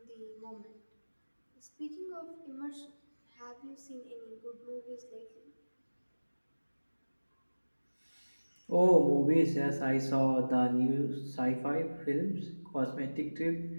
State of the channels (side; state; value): both; inverted; correlation -1.00